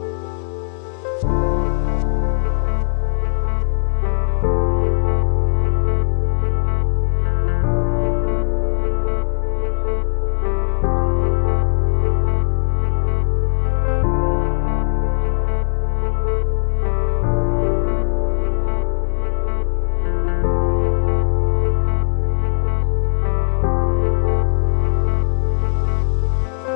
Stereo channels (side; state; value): right; silent; digital silence